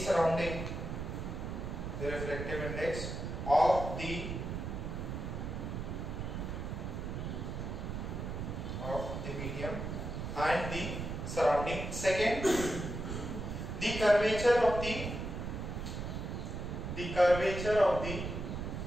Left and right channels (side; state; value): right; noise; rumble, 5 dB below the sound